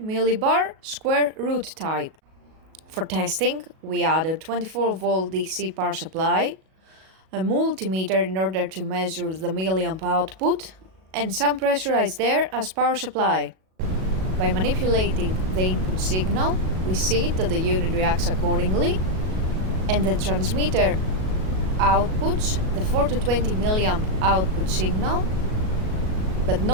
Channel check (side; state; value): left; late; 37 ms